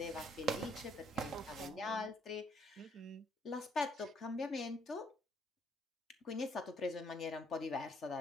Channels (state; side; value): normal; both; correlation 0.68